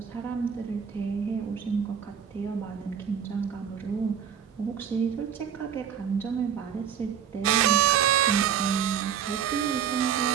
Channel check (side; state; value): left; quieter; 8.3 dB